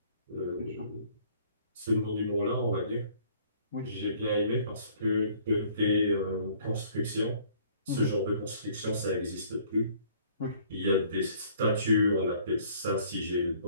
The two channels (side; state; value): both; inverted; correlation -0.57